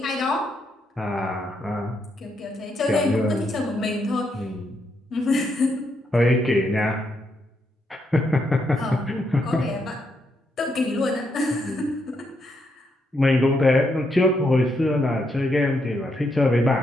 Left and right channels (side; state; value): both; normal; correlation 0.79